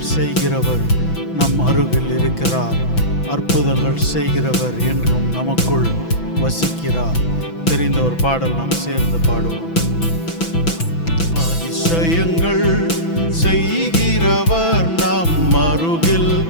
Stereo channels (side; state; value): right; late; 6.0 ms